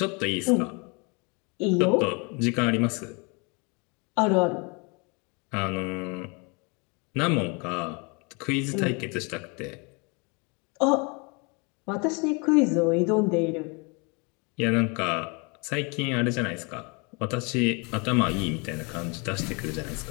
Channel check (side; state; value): right; quieter; 31.5 dB